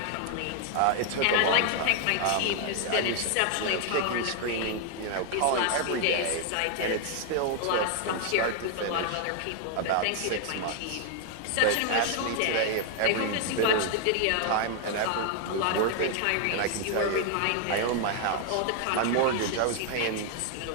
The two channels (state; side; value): different; both; correlation 0.00